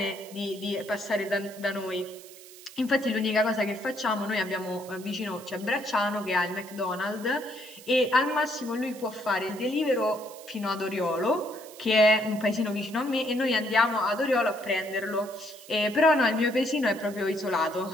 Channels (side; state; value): right; noise; hiss, 19 dB below the sound